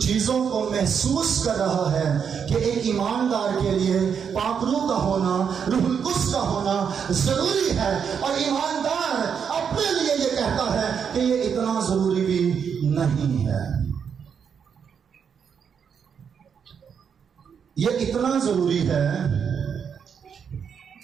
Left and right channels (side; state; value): left; quieter; 7.1 dB